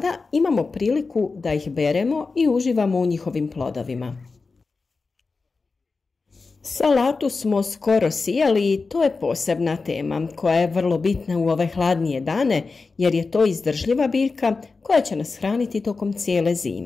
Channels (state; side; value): quieter; right; 4.2 dB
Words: imamo priliku da ih beremo i uživamo u njihovim plodovima. Salatu smo skoro sijali i to je posebna tema koja je vrlo bitna u ove hladnije dane jer je to izdržljiva biljka koja će nas hraniti tokom cijele